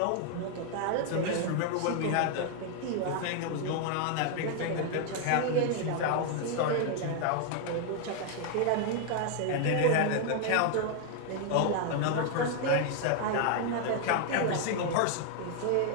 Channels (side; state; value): both; different; correlation 0.00